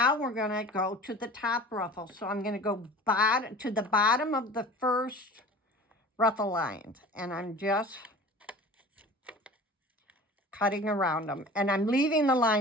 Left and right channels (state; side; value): normal; both; correlation 0.40